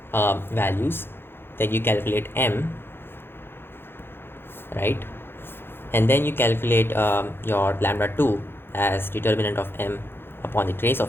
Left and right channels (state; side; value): late; right; 0.11 ms